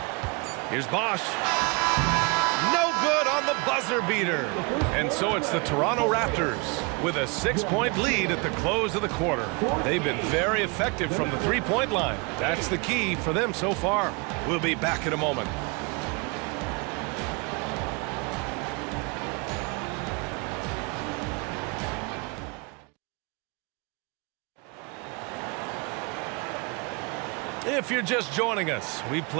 Here's Bosch. No good on the buzzer beater. And so it's the Toronto Raptors with a 6-point lead at the close of the quarter. They've been very effective from the three-point line. That's the key for them so far. We'll be back in a moment. If you're just joining us, we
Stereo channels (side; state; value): left; quieter; 30.4 dB